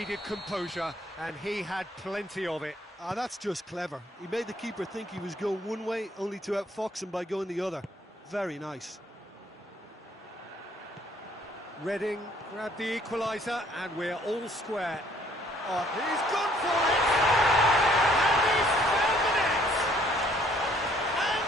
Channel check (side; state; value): both; normal; correlation 0.62